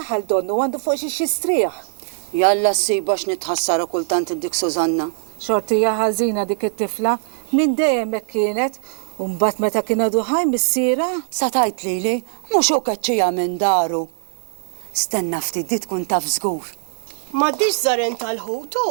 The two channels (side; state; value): left; silent; 65 dB below the other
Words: donnu għandu fuq xi xistrieħ. Jalla s-sibax nitħassara kultant id-dik Sużanna. Xortija ħażina dik it-tifla, minn dejjem hekk kienet, u mbagħad meta kien għadu ħaj missiera. Sa tajt lili, mhux hu kaċċija minn daru. Stenna ftit di tkun taf żgur. M'għaddix żaren